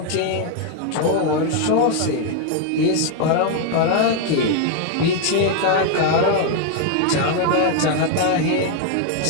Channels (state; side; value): different; both; correlation 0.00